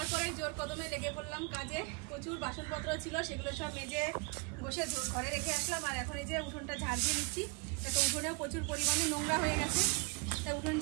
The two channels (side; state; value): left; quieter; 29.7 dB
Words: পরে জোর কদমে লেগে পড়লাম কাজে। প্রচুর বাসনপত্র ছিল, সেগুলো সব মেজে বসে ঘরে রেখে আসলাম। আর এখন এই যে উঠোনটা ঝাড় দিয়ে নিচ্ছি। তো উঠোনেও প্রচুর পরিমাণে নোংরা হয়ে গেছে, তা উঠোন